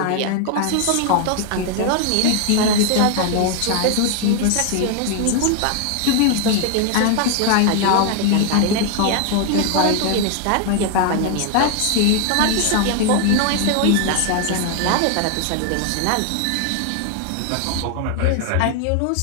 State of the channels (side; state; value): both; different; correlation 0.00